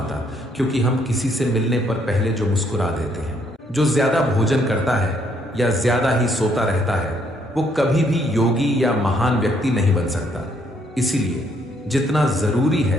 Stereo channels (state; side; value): normal; both; correlation 0.70